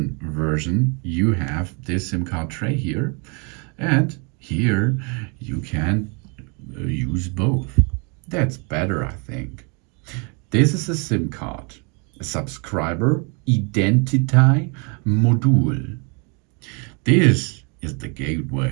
version, you have this SIM card tray here, and here you can use both. That's better, I think. This is a SIM card, a subscriber identity module. This is the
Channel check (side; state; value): left; quieter; 34.2 dB